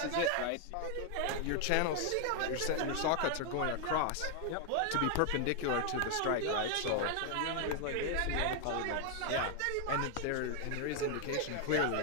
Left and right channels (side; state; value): both; different; correlation 0.00